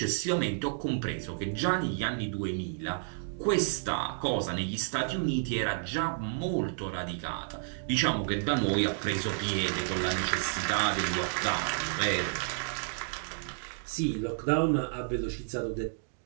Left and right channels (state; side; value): silent; left; digital silence